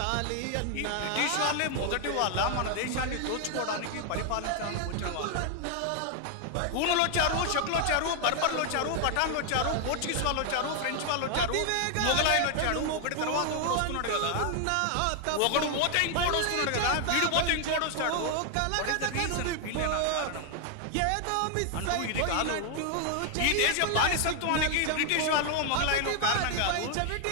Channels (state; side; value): different; both; correlation 0.00